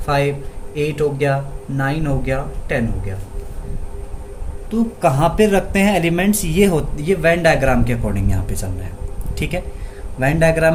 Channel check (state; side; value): identical; both; correlation 1.00